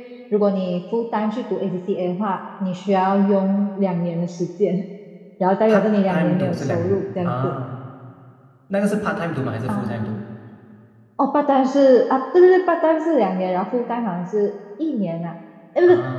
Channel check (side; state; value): both; identical; correlation 1.00